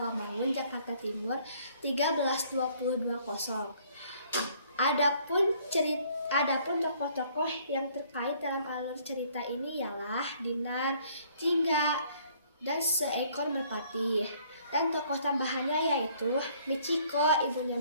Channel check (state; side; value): inverted; both; correlation -0.61